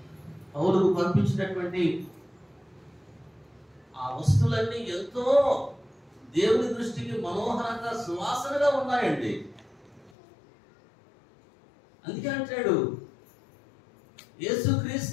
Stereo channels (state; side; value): drops out; right; at 10.1 s